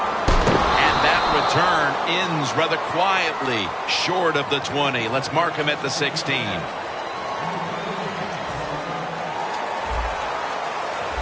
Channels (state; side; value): identical; both; correlation 1.00